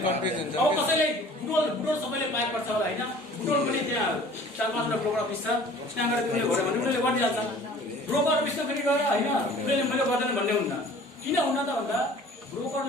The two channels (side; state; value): both; normal; correlation 0.48